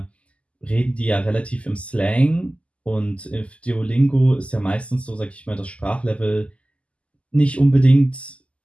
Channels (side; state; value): right; late; 0.059 ms